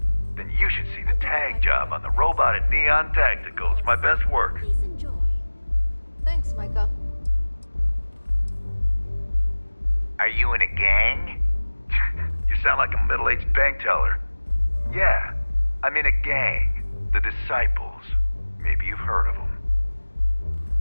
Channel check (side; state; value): both; inverted; correlation -1.00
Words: Then you should see the tag job on the robot at Neon Tactical. It's my best work. Please enjoy. Thanks, Micah. Are you in a gang? You sound like a middle-aged bank teller. Yeah, I'm in a gang. The Disciples. Maybe you've heard of them.